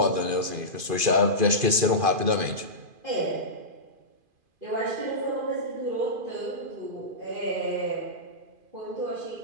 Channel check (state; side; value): late; left; 2.5 ms